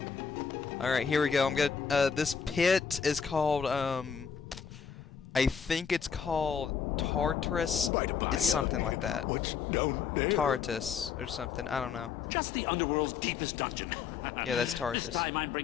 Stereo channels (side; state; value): right; quieter; 6.6 dB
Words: Alright, here we go. I'm gonna this pit is called I think it's called Tartarus. It's something like that. What's down there? Tartarus or something. I don't know. Just the Underworld's deepest dungeon. Yeah, that's Tartarus. This time I'm